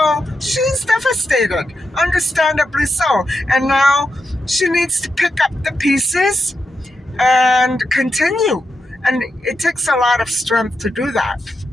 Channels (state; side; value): normal; both; correlation 0.86